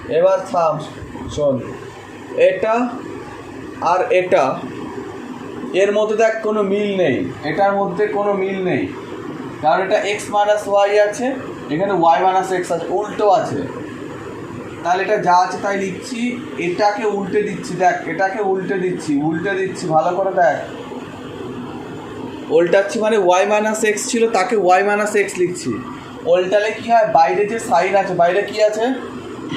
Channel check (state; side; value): identical; both; correlation 1.00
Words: এবার থাম শোন, এটা আর এটা এর মধ্যে দেখ কোনো মিল নেই, এটার মধ্যে কোনো মিল নেই, কারণ এটা এক্স মাইনাস ওয়াই আছে, এখানে ওয়াই মাইনাস এক্স আছে, উল্টো আছে। তাহলে এটা যা আছে তাই লিখছি, এটাকে উল্টে দিচ্ছি, দেখ এটাকে উল্টে দিচ্ছি ভালো করে দেখ, উল্টাচ্ছি মানে ওয়াই মাইনাস এক্স ছিল তাকে ওয়াই মাইনাস এক্স লিখছি। উল্টালে কি হয়, বাইরে যে সাইন আছে, বাইরে কি আছে